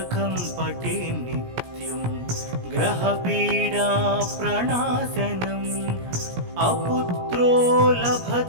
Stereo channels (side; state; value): left; late; 17 ms